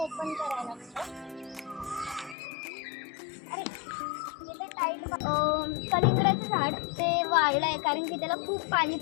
करायला लागतं. अरे इथे टाईट कलिंगडाचं झाड ते वाळलं आहे कारण की त्याला खूप पाणी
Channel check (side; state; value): right; drops out; at 2.4 s